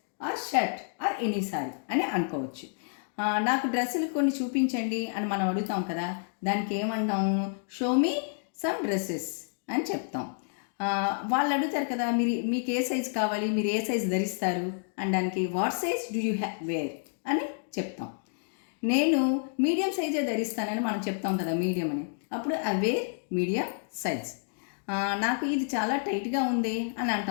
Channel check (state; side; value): silent; right; digital silence